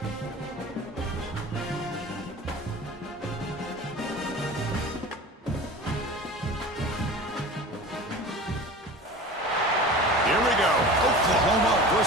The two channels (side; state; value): both; normal; correlation 0.36